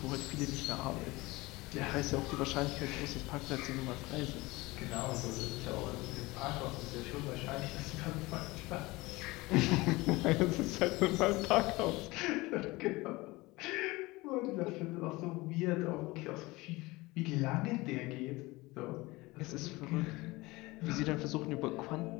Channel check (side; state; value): right; quieter; 21.6 dB